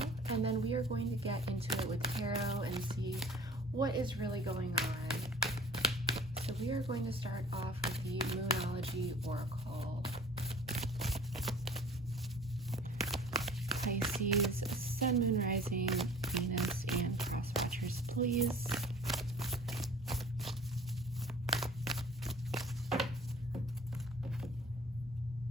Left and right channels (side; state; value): both; normal; correlation 0.47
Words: and then we are going to get into it with tarot and see what is really going on. So we are going to start off with the Moonology Oracle. Pisces, Sun, Moon, Rising, Venus, and Cross Watchers, please.